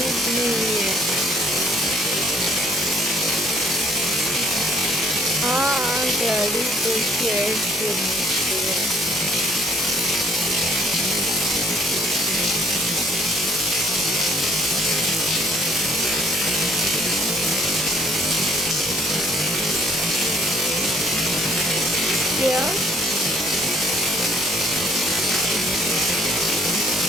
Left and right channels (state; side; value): normal; both; correlation 0.61